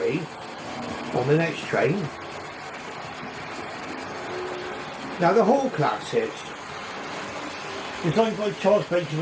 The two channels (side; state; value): both; identical; correlation 1.00